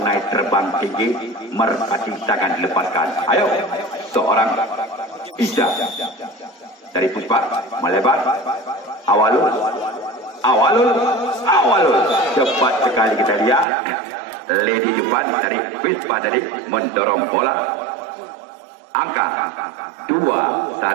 terbang tinggi, merpati tangan dilepaskan. Ayo, seorang Isya dari Puspa melebar. Awalun, cepat sekali kita lihat. Lady depan dari Puspa tadi mendorong bola. Angka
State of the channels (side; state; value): left; drops out; at 13.7 s